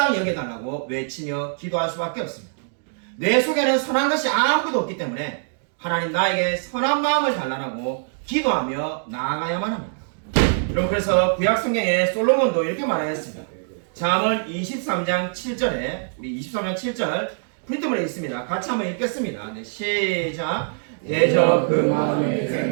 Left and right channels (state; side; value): silent; left; digital silence